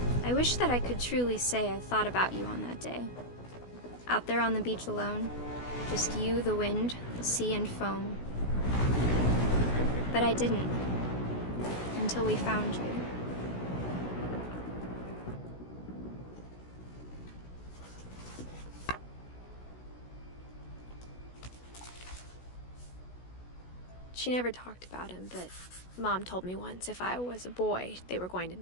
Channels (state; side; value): late; right; 16 ms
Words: I wish that I could truly say I thought about you on that day. Out there on the beach alone, just you, the wind, the sea, and foam. But I didn't, until we found you. She never talked about him, but Mom told me once if I was a boy, they were going to